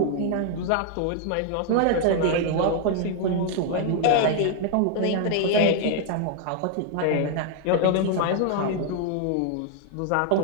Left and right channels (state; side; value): different; both; correlation 0.00